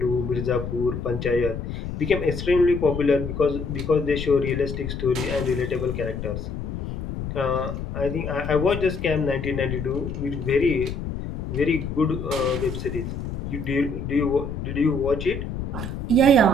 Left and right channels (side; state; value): left; noise; rumble, 6 dB below the sound